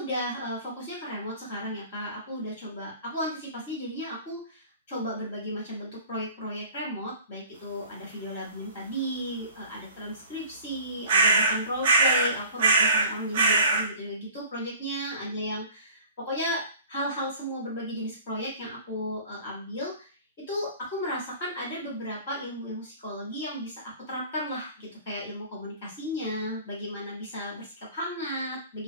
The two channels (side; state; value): both; inverted; correlation -0.46